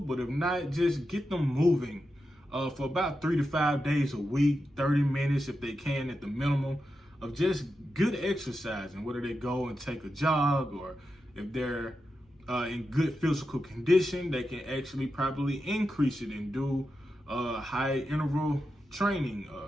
but if not, just get them moving for about 3 to 5 days a week, 30 minutes if they can at the minimum of just good exercising, whether they go and take a jog, or if they're in good physical condition, they can actually probably increase it and do high interval training,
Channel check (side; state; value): both; normal; correlation 0.89